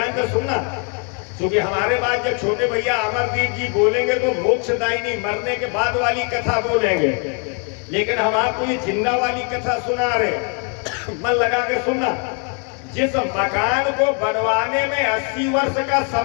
से सुनना, क्योंकि हमारे बाद जब छोटे भैया अमरदीप जी बोलेंगे तो मोक्षदायिनी मरने के बाद वाली कथा बोलेंगे, लेकिन हम आपको ये जिंदा वाली कथा सुना रहे। मन लगा के सुनना। जिस मकान को बनवाने में 80 वर्ष का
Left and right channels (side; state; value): right; quieter; 38.6 dB